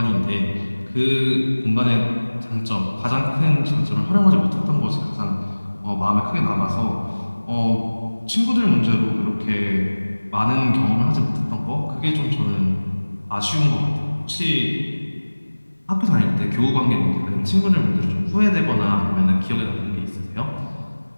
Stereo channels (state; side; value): inverted; both; correlation -1.00